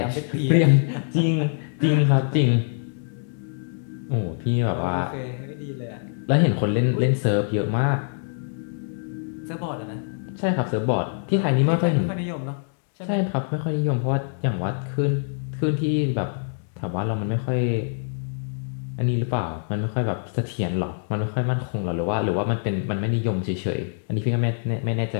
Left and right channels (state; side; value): silent; right; digital silence